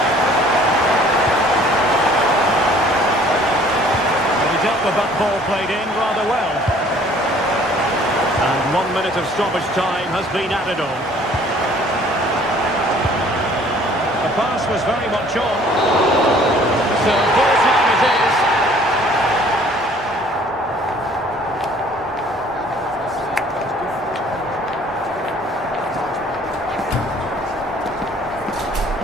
Well, he dealt with that ball played in rather well. And 1 minute of stoppage time has been added on. The pass was very much on. So,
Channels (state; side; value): normal; both; correlation 0.55